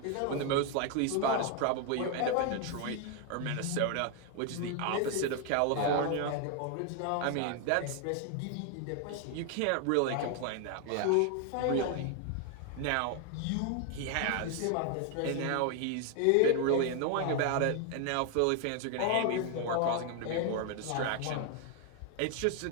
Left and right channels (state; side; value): different; both; correlation 0.00